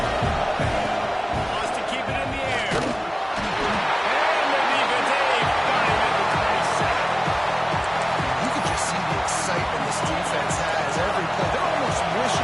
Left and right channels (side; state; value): both; identical; correlation 1.00